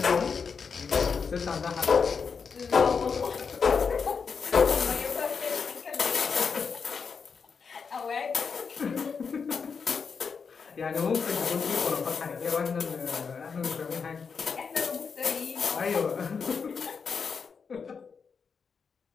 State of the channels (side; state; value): right; quieter; 5.7 dB